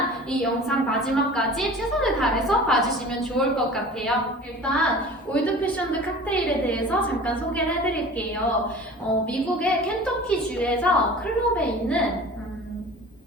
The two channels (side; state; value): both; normal; correlation 0.41